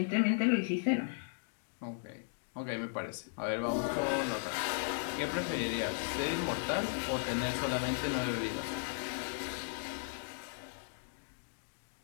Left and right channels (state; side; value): silent; right; digital silence